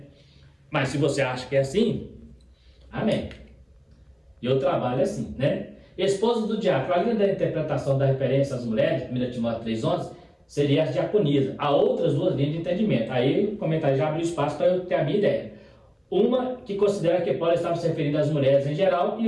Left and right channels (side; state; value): both; identical; correlation 1.00